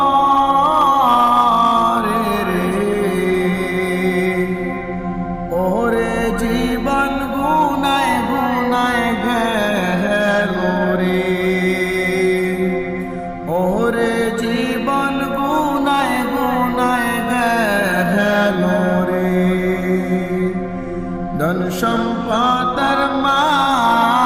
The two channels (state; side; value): identical; both; correlation 1.00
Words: রে ওরে জীবন গুনায় গুনায় গেল রে ওরে জীবন গুনায় গুনায় গেল রে ধন সম্পদের